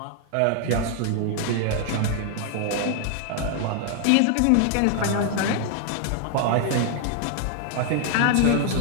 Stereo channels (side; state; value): both; different; correlation 0.00